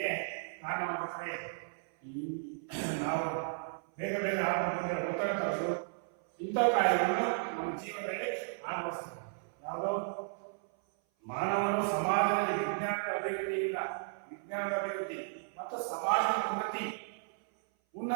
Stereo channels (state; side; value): silent; left; 55 dB below the other